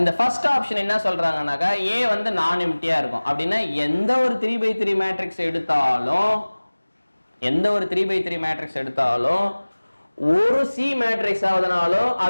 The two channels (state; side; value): inverted; both; correlation -1.00